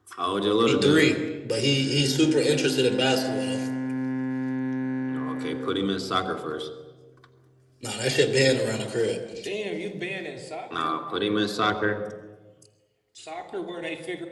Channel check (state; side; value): identical; both; correlation 1.00